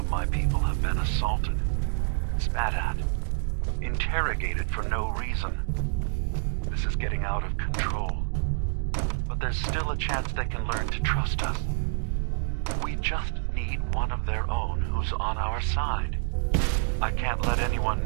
my people have been assaulted, spat at, interrogated for no reason. This is getting out of control. But there's still a chance they can learn to trust us. We just need one of their own who's on our side. I can't let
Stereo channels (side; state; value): left; silent; digital silence